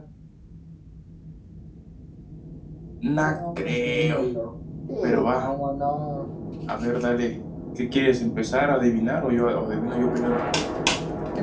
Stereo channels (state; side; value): identical; both; correlation 1.00